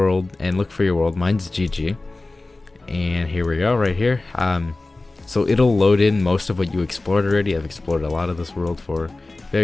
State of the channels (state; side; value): quieter; right; 3.2 dB